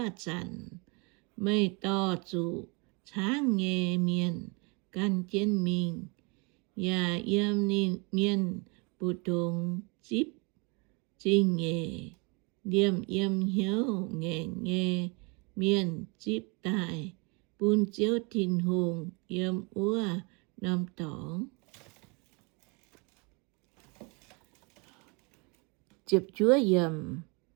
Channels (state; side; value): quieter; left; 31.2 dB